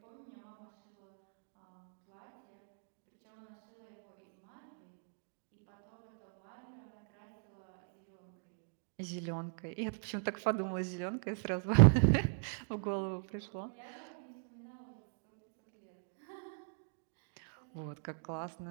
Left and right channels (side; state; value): left; silent; digital silence